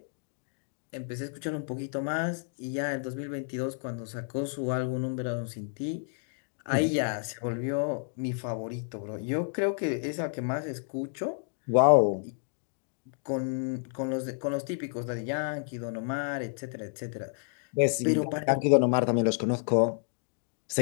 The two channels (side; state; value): right; silent; digital silence